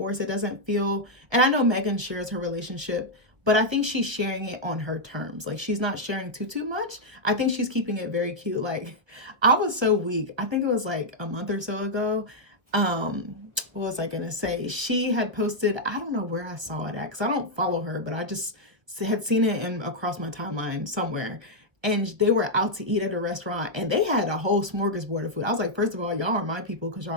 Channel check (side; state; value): left; late; 1.4 ms